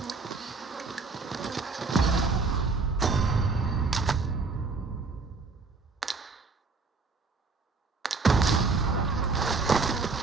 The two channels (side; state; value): left; quieter; 4.3 dB